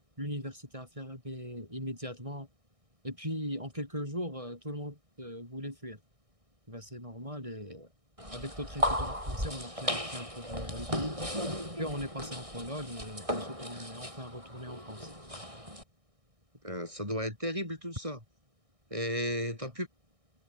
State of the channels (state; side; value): late; left; 1.6 ms